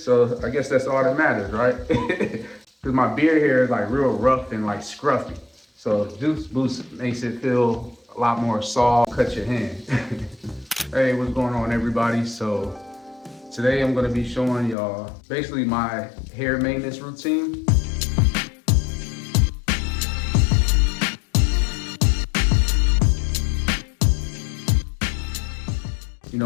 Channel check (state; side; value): drops out; right; at 14.8 s